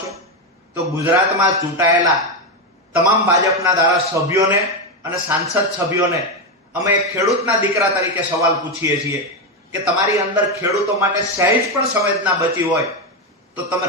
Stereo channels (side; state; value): both; normal; correlation 0.09